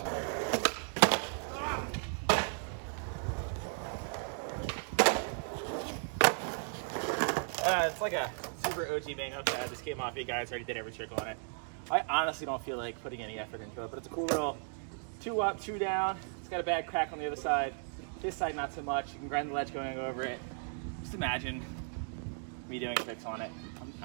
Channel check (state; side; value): silent; left; 54 dB below the other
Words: It's like a super OG bang up that the Skate Mafia guys already did every trick on it. I honestly don't feel like putting any effort into it, but it's a cool little 2 up, 2 down. It's got a bad crack on the other side. This side, not so much. You can grind the ledge going over it. Just imagine me doing tricks on it.